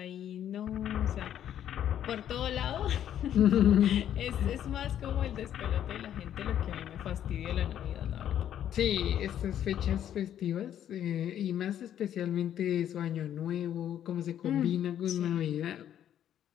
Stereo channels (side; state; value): right; quieter; 10.5 dB